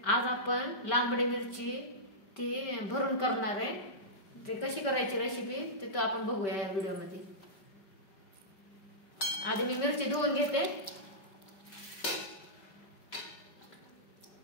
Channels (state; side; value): late; right; 5.2 ms